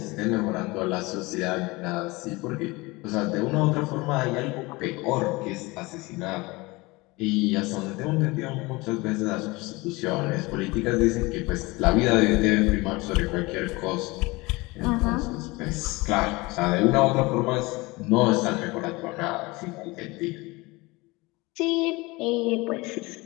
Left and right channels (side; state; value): right; quieter; 23.3 dB